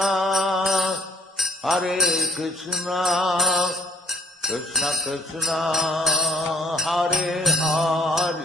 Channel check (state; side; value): normal; both; correlation 0.63